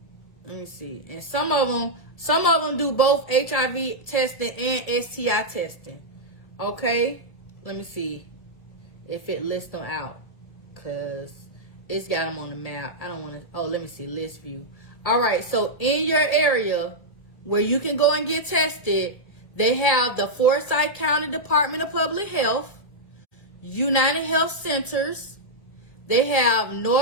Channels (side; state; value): right; late; 1.8 ms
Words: Let me see. And some of them do both HIV testing and STI testing. Okay? Let me see if it lists them out. Because it's got them on the map. I don't want to. Oh, let me see. List view. All right. So in your area where you can go and get tested, they have the Forsyth County Department of Public Health, United Health Centers. They have